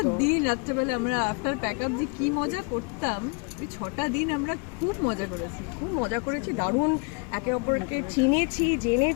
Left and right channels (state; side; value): quieter; right; 31.8 dB